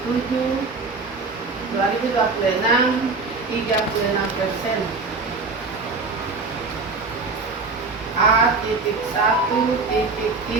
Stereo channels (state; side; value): quieter; left; 4.0 dB